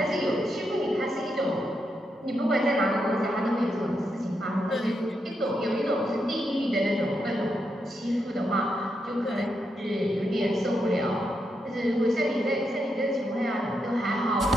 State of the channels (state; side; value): normal; both; correlation 0.82